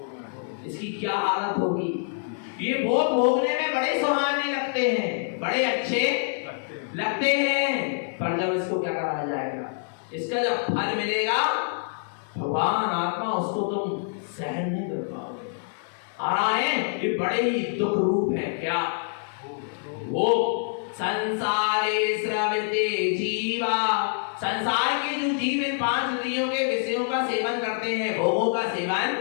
इसकी क्या हालत होगी। ये भोग भोगने में बड़े सुहाने लगते हैं, बड़े अच्छे लगते हैं, पर जब इसको क्या करा जाएगा, इसका जब फल मिलेगा भगवान आत्मा उसको तुम सहन नहीं कर पाओगे। आ रहा है, ये बड़े ही दुख रूप है। क्या? वो संसारे स्रवते जीवा, संसार के जो जीव इन 5 इंद्रियों के विषयों का सेवन करते हैं, भोगों का सेवन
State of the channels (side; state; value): right; silent; digital silence